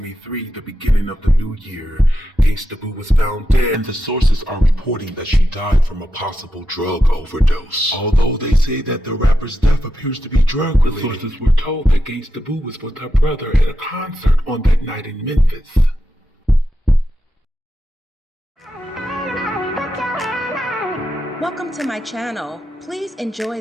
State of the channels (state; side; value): normal; both; correlation 0.87